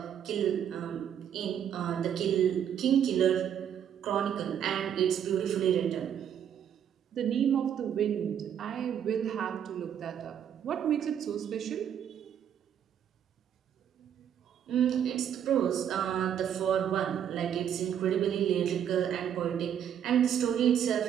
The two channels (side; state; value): left; quieter; 9.1 dB